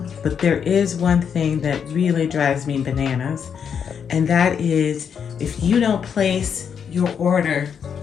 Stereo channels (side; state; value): right; quieter; 7.3 dB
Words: but there is one thing that really drives me bananas, and that is if you don't place your order